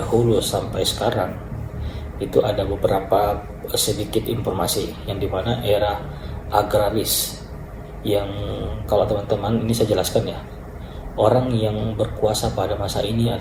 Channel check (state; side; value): identical; both; correlation 1.00